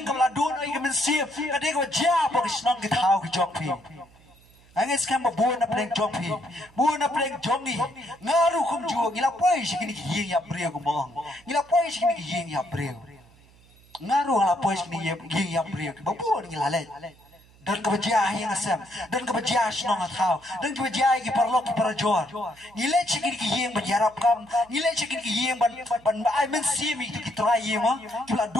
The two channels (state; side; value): noise; right; hum, 27 dB below the sound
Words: ka la don ai ka min sip kani ka ja pa ki snong ki thau ki jo phi angis kam bu na pleng jo phi bu na pleng jongi ngaru kum jo ngila poi se kani ki yeng ya breu ko mong ngila poi se kani ki yeng ya breu ngaru la poi se kani yeng ya breu ki ba bu ngila le dan kebajiah yang asam dan kebajiah senong atau dan kebajiah ki parlok ki parajor nilai cekin ki yang berjarap kam nilai cekin ki yang ban ai men simi ki trai yang ki la